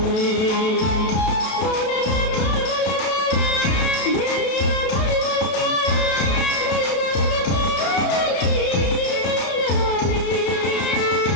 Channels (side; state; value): right; late; 32 ms